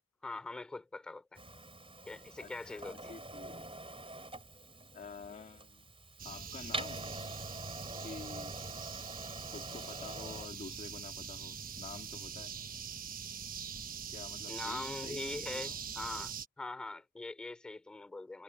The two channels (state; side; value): normal; both; correlation 0.48